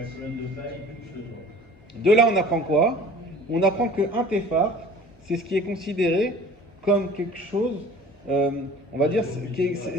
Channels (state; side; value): normal; both; correlation 0.45